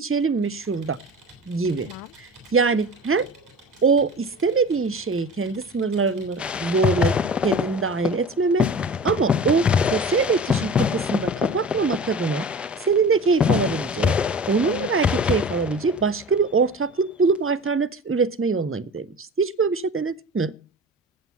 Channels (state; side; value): normal; both; correlation 0.36